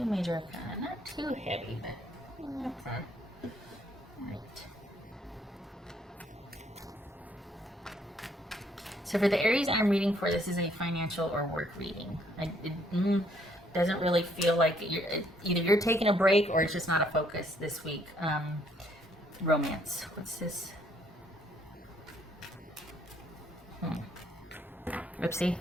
major arcana. Not too heavy, but okay. Alright. So for the Aries I'm reading for, this is a financial or work reading. It doesn't really feel like either you're taking a break or it's just not a focus this week. Romance. What's this? Oopsie.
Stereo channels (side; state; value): both; normal; correlation 0.67